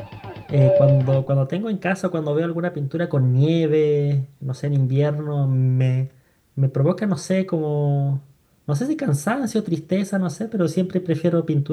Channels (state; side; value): identical; both; correlation 1.00